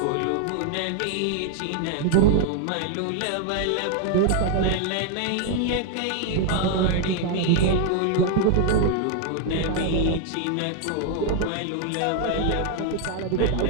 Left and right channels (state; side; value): different; both; correlation 0.00